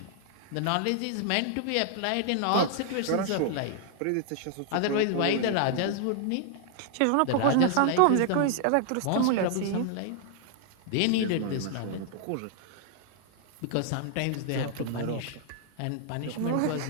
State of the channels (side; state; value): both; different; correlation 0.00